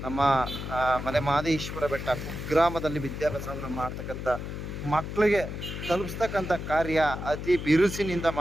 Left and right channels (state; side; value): noise; left; hum, 7 dB below the sound